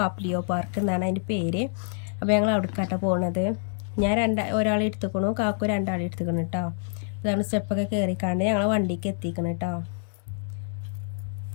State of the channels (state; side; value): silent; right; digital silence